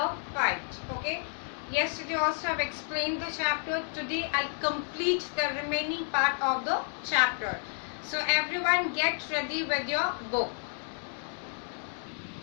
fight. Okay. Yesterday also I have explained the chapter. Today I'll complete the remaining part of the chapter. So everyone get ready with your book.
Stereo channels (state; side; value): silent; right; 57 dB below the other